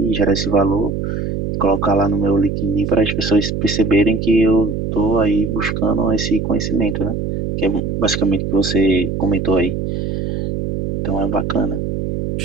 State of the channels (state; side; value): noise; right; hum, 3 dB below the sound